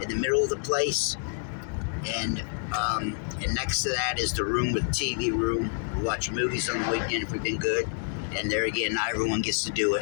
in the middle of the place, and next to that is the room with the TV room. We watch movies on the weekend if we've been good. And there again, not everyone gets to do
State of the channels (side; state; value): right; silent; digital silence